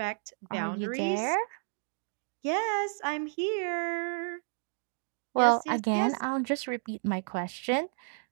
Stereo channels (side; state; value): left; silent; digital silence